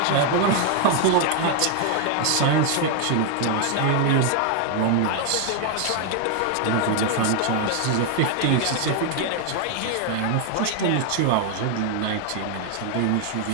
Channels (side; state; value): both; different; correlation 0.00